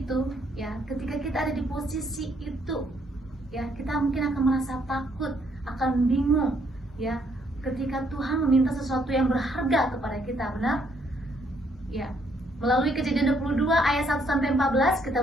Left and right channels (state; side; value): normal; both; correlation 0.70